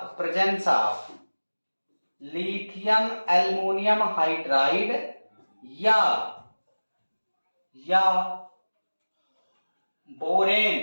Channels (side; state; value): both; inverted; correlation -1.00